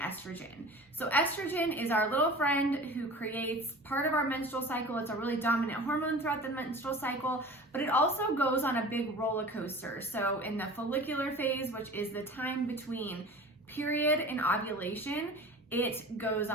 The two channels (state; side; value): normal; both; correlation 0.39